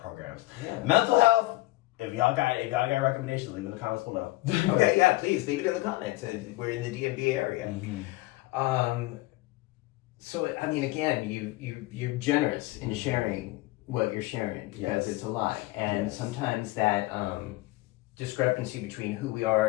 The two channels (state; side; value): quieter; right; 19.8 dB